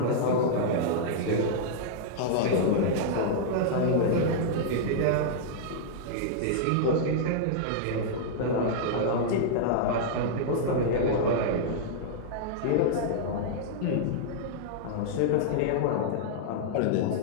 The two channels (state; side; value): different; both; correlation -0.02